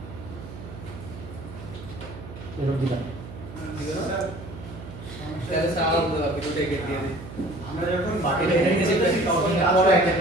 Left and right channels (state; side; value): noise; right; hum, 13 dB below the sound